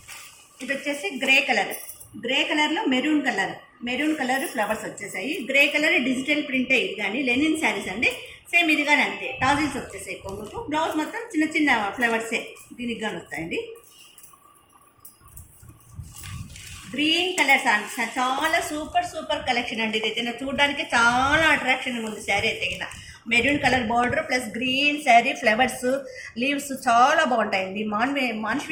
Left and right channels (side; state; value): both; identical; correlation 1.00